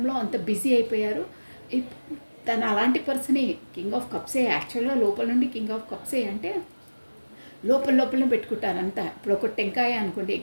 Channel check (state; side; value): inverted; both; correlation -1.00